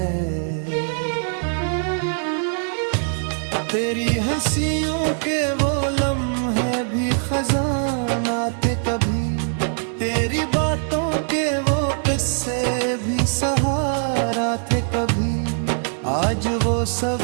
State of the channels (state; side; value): silent; left; digital silence